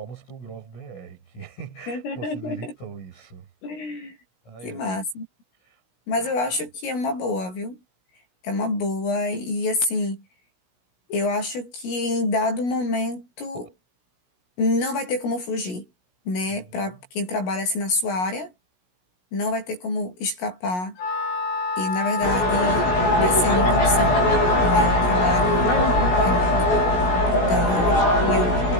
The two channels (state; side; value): late; right; 16 ms